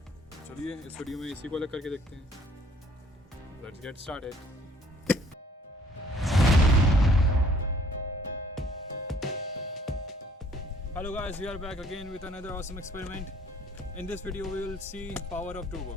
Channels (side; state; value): both; normal; correlation 0.59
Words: चलिए इस वीडियो में इसी को अलग करके देखते हैं। Let's get started. Hello guys, we are back again with another awesome experiment. In this video we will see power of two